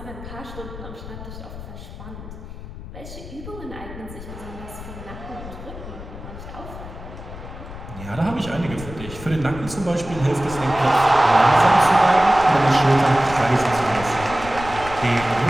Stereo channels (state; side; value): noise; left; rumble, 12 dB below the sound